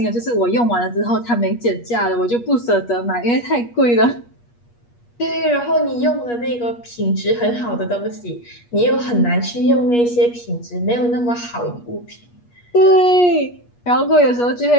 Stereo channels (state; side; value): late; right; 8.4 ms